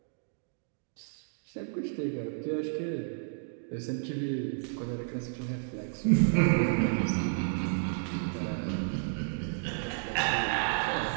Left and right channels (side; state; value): left; silent; digital silence